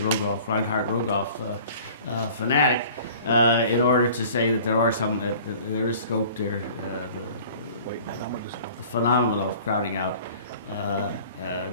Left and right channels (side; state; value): both; inverted; correlation -0.47